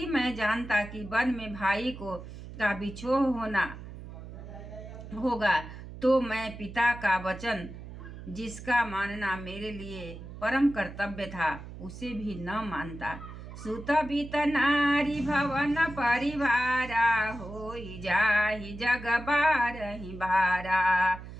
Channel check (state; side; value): noise; right; hum, 13 dB below the sound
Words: मैं जानता कि वन में भाई का बिछोह होना होगा तो मैं पिता का वचन, जिसका मानना मेरे लिए परम कर्तव्य था, उसे भी न मानता। सुत बीत नारी भवन परिवारा होई जाहि जग बारहि बारा।